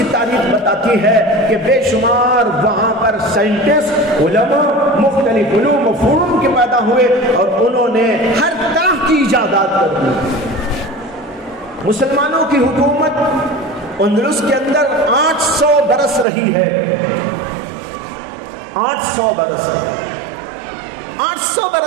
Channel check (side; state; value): left; drops out; at 16.2 s